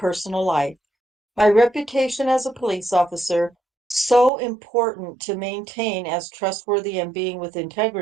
life. My reputation as a police officer, so important to maintain as trustworthy and being with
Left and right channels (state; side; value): drops out; left; at 4.3 s